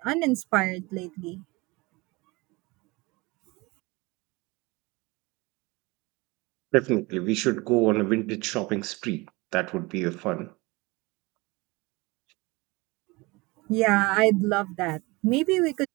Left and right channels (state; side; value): quieter; left; 23.9 dB